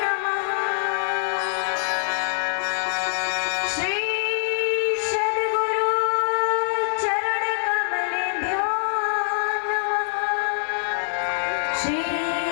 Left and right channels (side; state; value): right; silent; digital silence